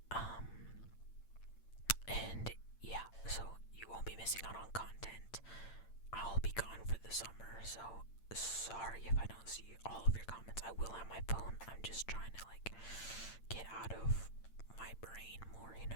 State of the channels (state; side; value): late; right; 8.8 ms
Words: And yeah, so you won't be missing out on content. I'll be gone for the summer, so sorry if I don't see all of your comments. I will have my phone. I'm just trying to like get out of my brain more, you know